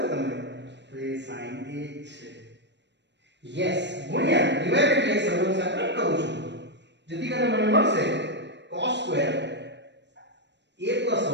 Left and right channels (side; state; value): left; late; 0.51 ms